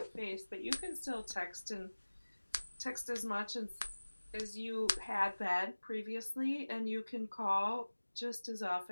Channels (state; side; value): inverted; both; correlation -1.00